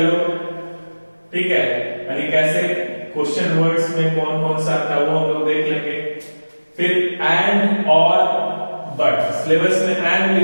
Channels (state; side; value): inverted; both; correlation -1.00